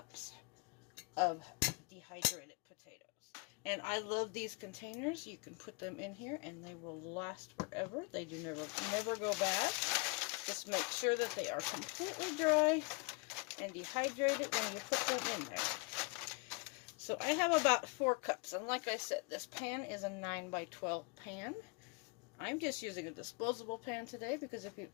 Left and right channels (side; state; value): right; quieter; 31.7 dB